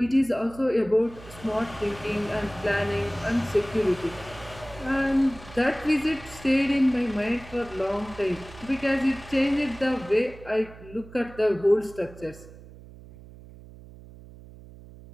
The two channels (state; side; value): noise; right; hum, 18 dB below the sound